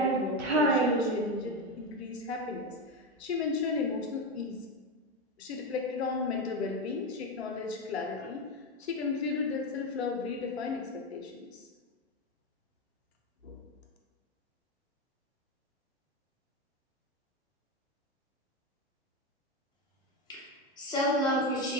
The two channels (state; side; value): normal; both; correlation 0.13